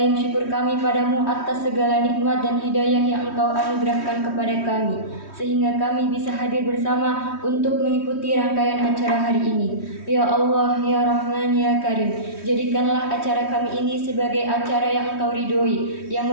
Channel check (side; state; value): right; late; 3.1 ms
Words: syukur kami padamu atas segala nikmat dan hidayah yang Engkau anugerahkan kepada kami, sehingga kami bisa hadir bersama untuk mengikuti rangkaian acara hari ini. Ya Allah, ya Rahman, ya Karim, jadikanlah acara kami ini sebagai acara yang Engkau ridhoi, yang